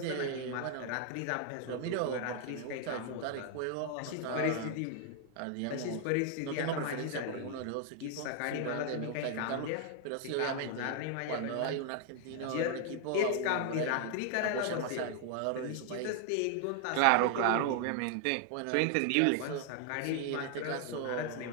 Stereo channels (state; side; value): different; both; correlation 0.00